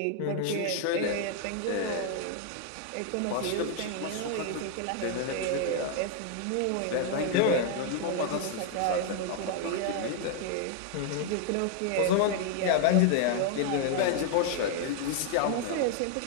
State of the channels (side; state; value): both; different; correlation 0.00